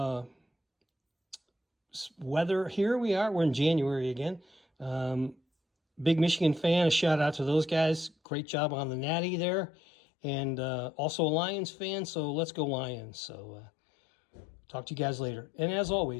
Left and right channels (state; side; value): drops out; right; at 8.2 s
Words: weather. Here we are. We're in January again. Big Michigan fan. A shout out to those guys. Great job on the Natty there. And also a Lions fan, so let's go Lions. So talk to you guys later. And as